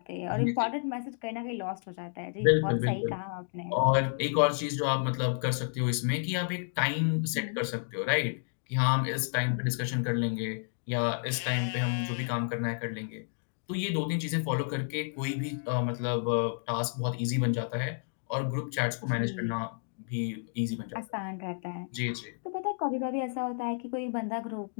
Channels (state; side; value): silent; right; digital silence